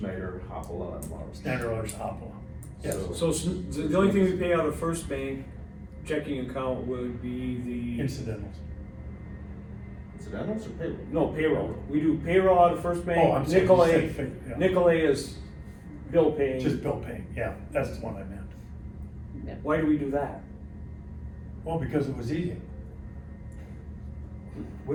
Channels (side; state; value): both; identical; correlation 1.00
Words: Hopala, and Mars. Standard Hopla. Yes, so the only thing we pay out of First Bank checking account would be the, incidentals. Incidentals or payroll? no, payroll. We do payroll out of First Oh, I'm Bank, sorry. Nicolay, Yeah. Nicolay is bill paying. Just bill paying, yeah, that's the one I meant. Why do we do that? Well, because it was easy.